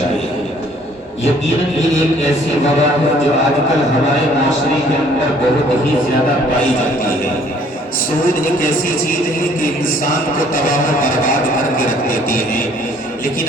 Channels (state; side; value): normal; both; correlation 0.59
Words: ہے۔ یقیناً یہ ایک ایسی وبا ہے جو آج کل ہمارے معاشرے کے اندر بہت ہی زیادہ پائی جاتی ہے۔ سود ایک ایسی چیز ہے کہ انسان کو تباہ و برباد کر کے رکھ دیتی ہے،